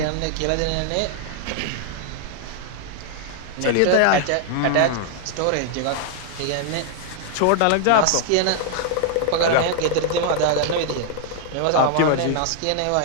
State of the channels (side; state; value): both; different; correlation 0.00